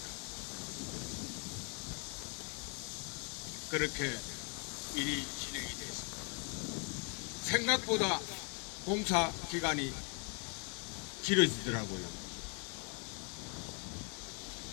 그렇게 일이 진행이 됐습니다. 생각보다 공사 기간이 길어지더라고요.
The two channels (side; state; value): right; quieter; 34.2 dB